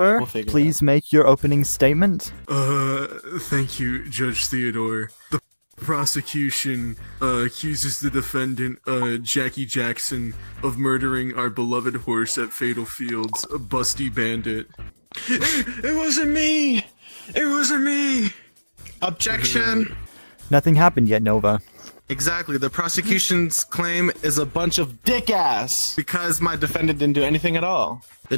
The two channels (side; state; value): both; inverted; correlation -1.00